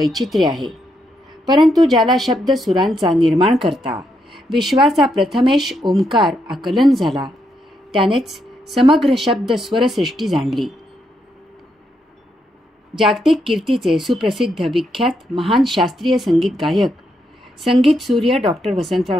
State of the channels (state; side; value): normal; both; correlation 0.79